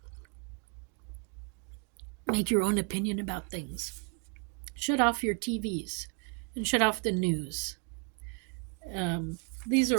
make your own opinion about things. Shut off your TVs and shut off the news. These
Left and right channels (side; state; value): left; quieter; 35.9 dB